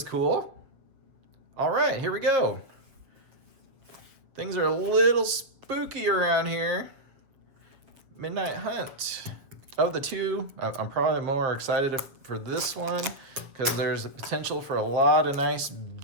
cool. All right, here we go. Things are a little spooky around here. Midnight Hunt. Of the two, I'm probably more excited for this one because there's a potential for a lot of nice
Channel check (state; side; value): late; left; 7.3 ms